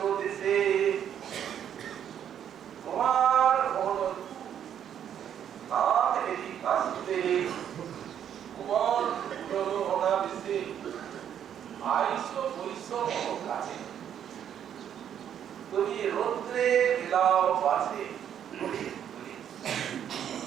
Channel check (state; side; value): quieter; left; 9.4 dB